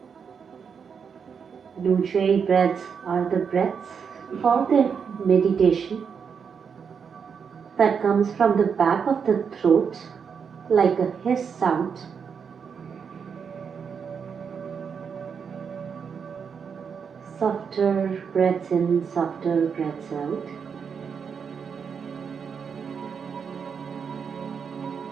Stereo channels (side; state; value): left; quieter; 6.5 dB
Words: Ujjayi breaths are the breaths for the meditation that comes from the back of the throat like a hiss sound. Softer breaths in, softer breaths out.